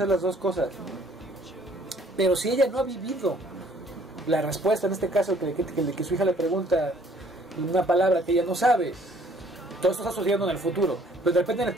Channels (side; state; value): both; normal; correlation 0.59